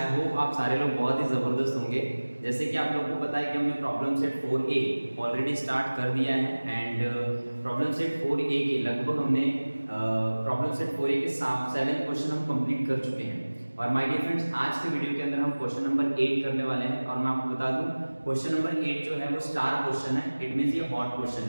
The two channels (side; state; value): both; inverted; correlation -1.00